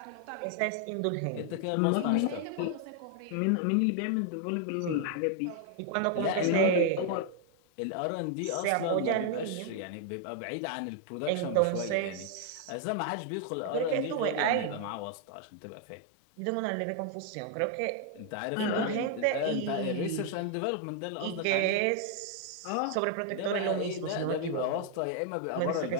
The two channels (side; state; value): both; different; correlation 0.00